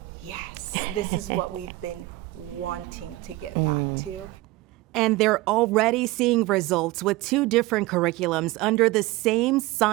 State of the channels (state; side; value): quieter; left; 19.4 dB